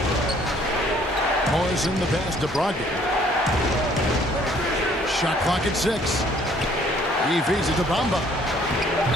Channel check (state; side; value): normal; both; correlation 0.60